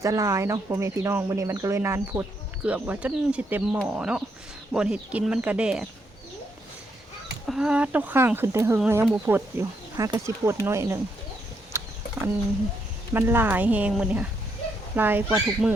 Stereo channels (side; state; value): both; normal; correlation 0.77